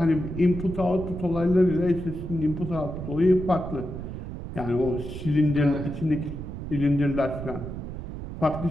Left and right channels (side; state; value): right; noise; rumble, 8 dB below the sound